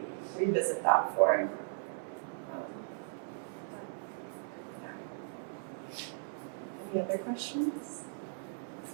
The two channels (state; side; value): silent; left; 53 dB below the other